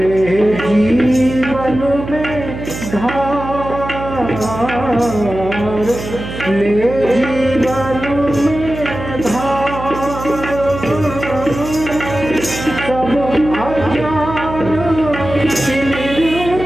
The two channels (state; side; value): noise; right; hum, 9 dB below the sound